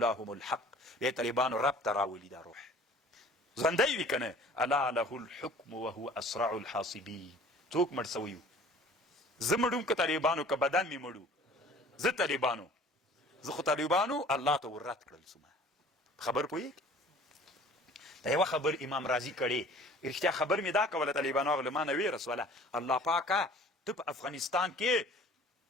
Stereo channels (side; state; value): both; normal; correlation 0.49